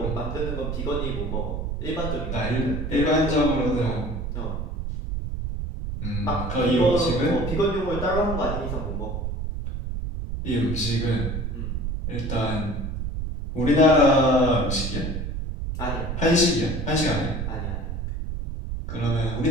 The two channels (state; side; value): noise; right; rumble, 4 dB below the sound